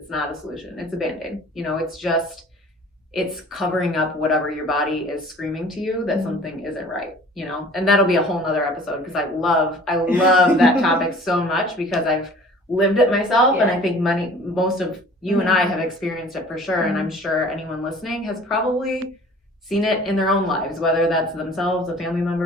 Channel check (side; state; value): both; normal; correlation 0.48